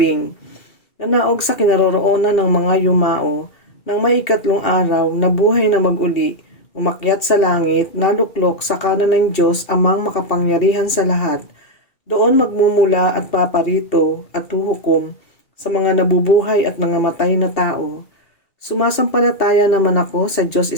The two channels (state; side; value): late; right; 2.7 ms